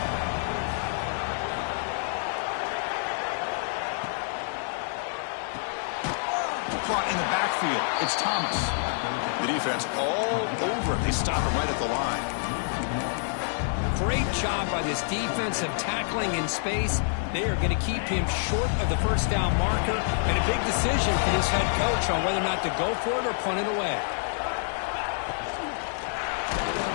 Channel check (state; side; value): silent; right; digital silence